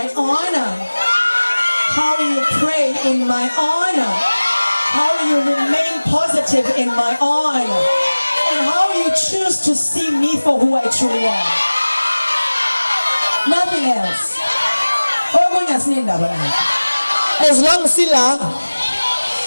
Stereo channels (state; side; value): inverted; both; correlation -1.00